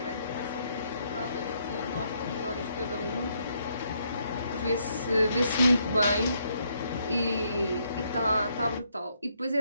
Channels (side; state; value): both; inverted; correlation -0.74